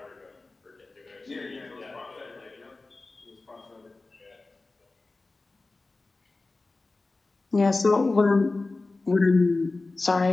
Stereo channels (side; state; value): right; quieter; 3.4 dB